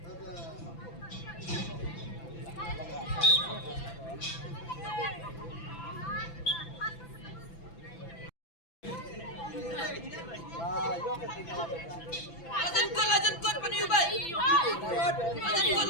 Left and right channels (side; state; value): right; late; 6.0 ms